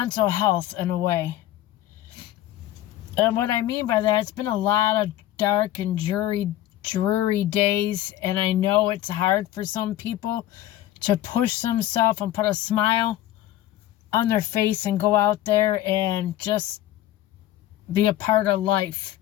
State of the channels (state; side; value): quieter; right; 14.0 dB